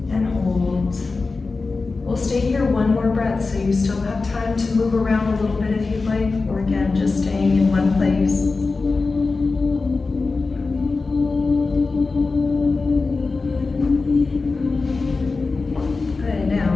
And hold. We'll stay here one more breath so you still have time to move around a little bit if you'd like, or again, just staying in one place. Good, now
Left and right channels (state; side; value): quieter; right; 3.9 dB